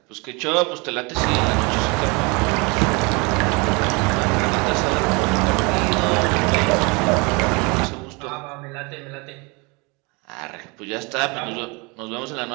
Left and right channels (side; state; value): left; quieter; 28.5 dB